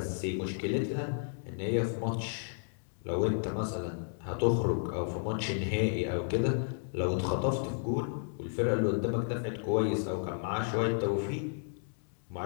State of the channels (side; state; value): right; silent; digital silence